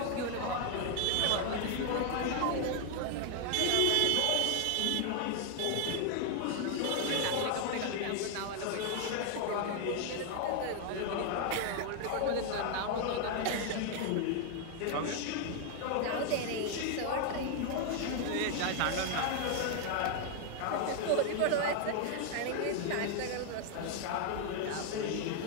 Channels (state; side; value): different; both; correlation 0.00